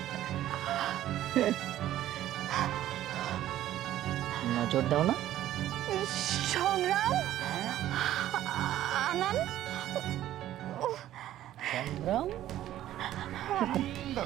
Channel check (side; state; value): left; quieter; 13.1 dB